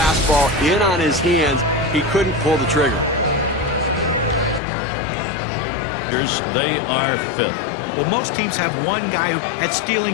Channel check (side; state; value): right; drops out; at 4.6 s